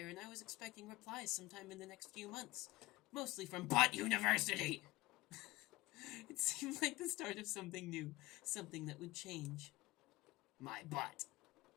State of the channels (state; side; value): quieter; right; 19.3 dB